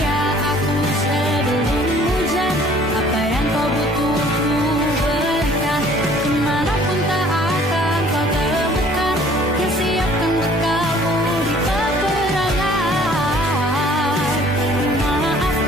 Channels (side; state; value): both; normal; correlation 0.55